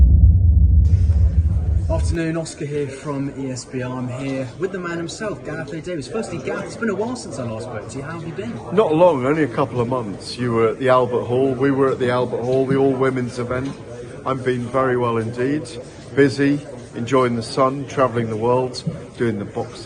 Afternoon, Oscar here from ESBR. I'm here with the man himself, Gareth Davies. Firstly, Gareth, it's been a while since I last spoke to you. How have you been? Not long, only a couple of months. You were at the Albert Hall, we were at the Albert Hall, the all-women's event. I've been very well indeed, busy, enjoying the sun, travelling the world, doing the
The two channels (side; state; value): both; identical; correlation 1.00